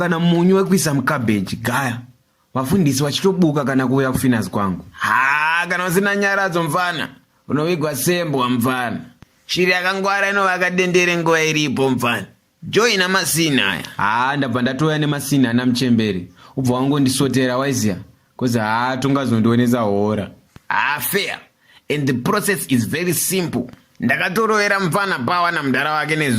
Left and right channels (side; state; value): both; identical; correlation 1.00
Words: munyu wekuisa mukabeji gaya. Vafundisi vachitobuka kana kuuya kufinazi kwangu. Kana usina nyaradzo mfana, unovigwa sembwa mfana. Shiri yakangwara inovaka dendere nguva iripo mfana. Joina masina aya. Ndabva ndatoya nemasina ana muchemberi. Ubva wangondisotera waiziya. Kozi tongazondionesa hora. Fair. And the process is very simple. Ndakatorovera mfana pawa na mudara wake